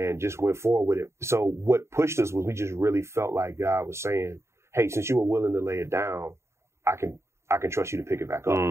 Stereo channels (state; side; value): late; left; 0.13 ms